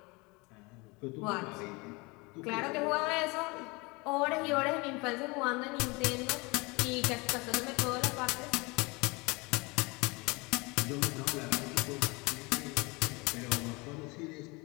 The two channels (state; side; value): quieter; right; 26.2 dB